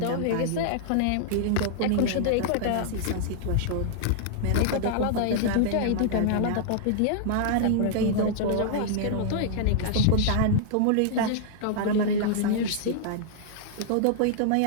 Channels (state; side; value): different; both; correlation -0.01